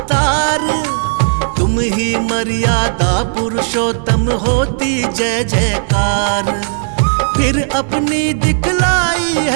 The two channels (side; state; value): left; silent; digital silence